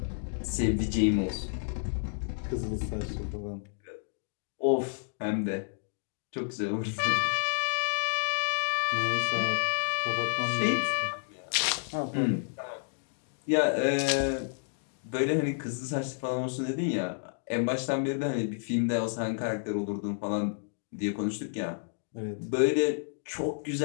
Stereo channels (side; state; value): right; silent; digital silence